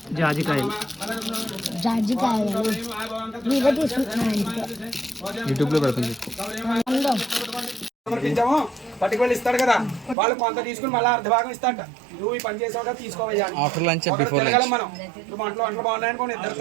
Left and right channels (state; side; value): drops out; left; at 10.2 s